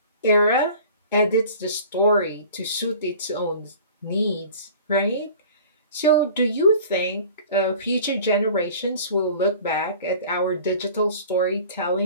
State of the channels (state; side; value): inverted; both; correlation -0.44